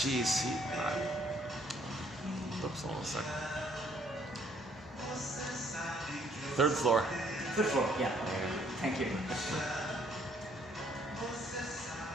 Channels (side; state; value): both; normal; correlation 0.65